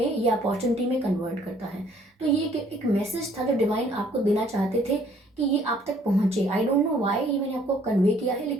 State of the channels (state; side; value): normal; both; correlation 0.61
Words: या अपॉर्चुनिटी में कन्वर्ट करता है। तो ये एक मैसेज था जो डिवाइन आपको देना चाहते थे कि ये आप तक पहुंचे। आई डोंट नो व्हाई ये मैंने आपको कन्वे किया है,